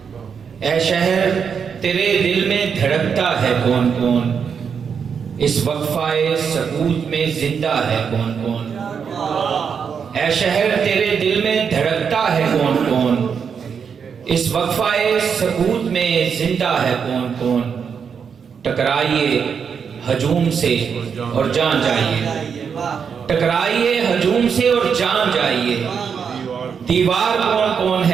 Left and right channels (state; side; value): quieter; left; 6.7 dB